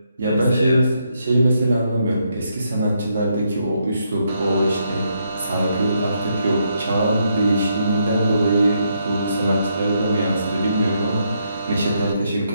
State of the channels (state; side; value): inverted; both; correlation -0.77